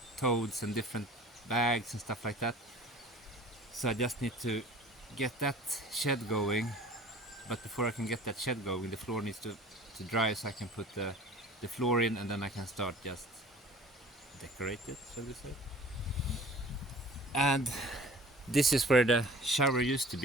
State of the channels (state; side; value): normal; both; correlation 0.45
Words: totes and different bags and stuff like that. So I just need to get that shed going, but before I can get that shed going, the floor needs to dry, so I can put the floor in, and then I can start just decorate it, shall we say. And this is where the shower used to